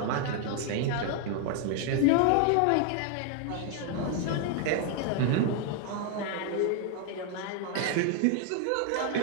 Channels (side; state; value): both; different; correlation 0.00